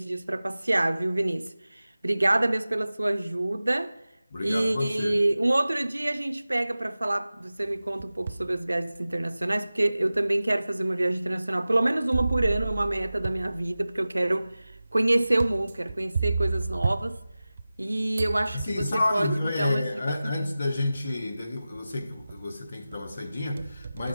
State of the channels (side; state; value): both; inverted; correlation -0.96